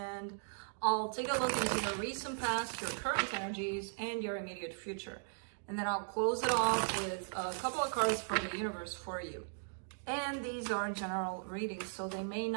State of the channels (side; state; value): left; silent; digital silence